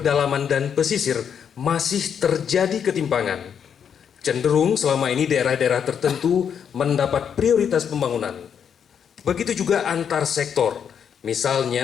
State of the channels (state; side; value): quieter; right; 7.8 dB